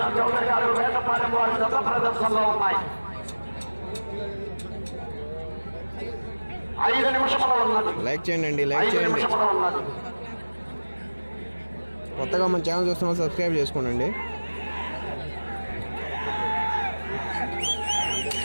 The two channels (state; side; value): inverted; both; correlation -1.00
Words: చౌదరి గారు, వేటపాలెం వారి జత ప్రదర్శనలో ఉన్నాయి. 5 నిమిషముల ఉన్నది. లైక్ చేయండి, లైక్ చేయండి. ఉన్నది. కొత్తగా మన ఛానల్ చూస్తున్న సబ్స్క్రైబ్ చేసుకోండి.